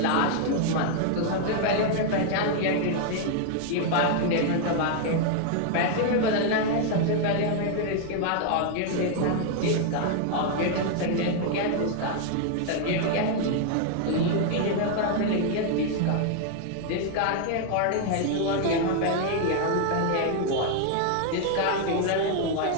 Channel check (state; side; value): different; both; correlation 0.00